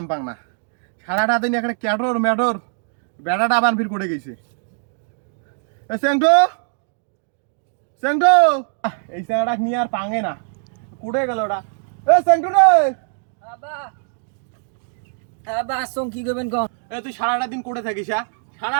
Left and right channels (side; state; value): left; silent; digital silence